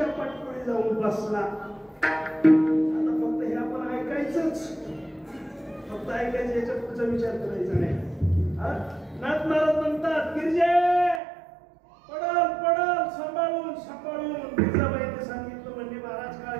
पाठपुढे जाऊन बसला आता फक्त हे आपण ऐकायचंच. फक्त ऐकायचं, याच्या पुढचा विचार करायचा नाही. नाथ महाराज म्हणतात गिरजे पडल पडल सांभाळून सांभाळून. गिरजाबाईने सांगितलं म्हणजे महाराज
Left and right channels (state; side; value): drops out; left; at 11.2 s